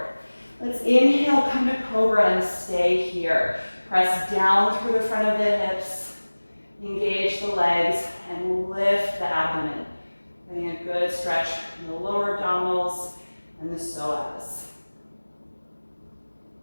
Let's inhale, come to cobra and stay here. Press down through the front of the hips. Engage the legs and lift the abdomen. Getting a good stretch in the lower abdominals and the psoas.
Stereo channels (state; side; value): inverted; both; correlation -1.00